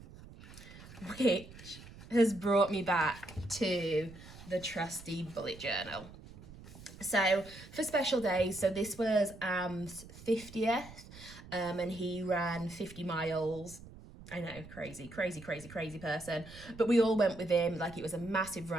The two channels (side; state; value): right; noise; rumble, 17 dB below the sound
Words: which has brought me back to the trusty bullet journal. So for special days, so this was Am's 50th, and he ran 50 miles. I know, crazy person. But we all went with him. Like, it was a massive